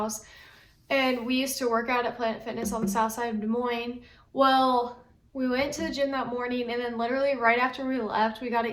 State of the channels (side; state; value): both; identical; correlation 1.00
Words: And we used to work out at Planet Fitness on the south side of Des Moines. Well, we went to the gym that morning, and then literally right after we left, we got